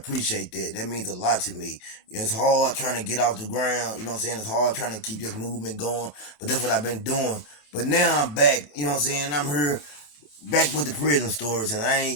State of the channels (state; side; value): late; right; 27 ms